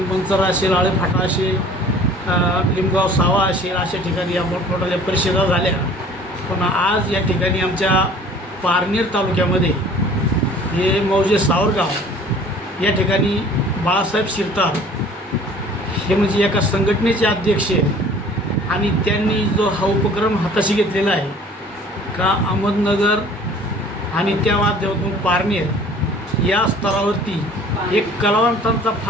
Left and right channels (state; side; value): normal; both; correlation 0.49